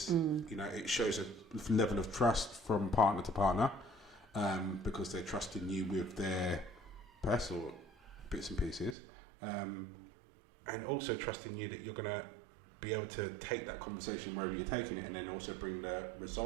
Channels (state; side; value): drops out; left; at 9.0 s